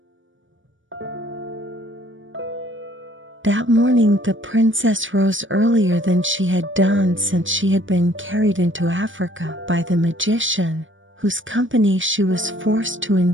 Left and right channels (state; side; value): late; left; 0.56 ms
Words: That morning the princess rose earlier than she had done since she had been carried into Africa by the magician, whose company she was forced to